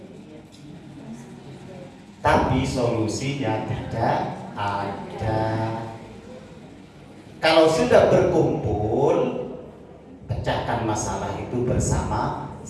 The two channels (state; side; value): identical; both; correlation 1.00